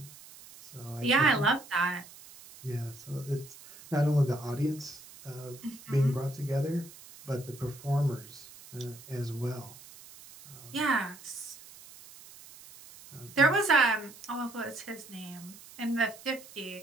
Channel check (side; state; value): right; noise; hiss, 19 dB below the sound